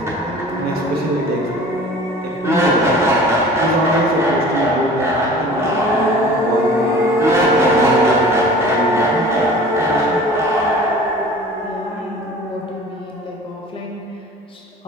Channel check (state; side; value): normal; both; correlation 0.43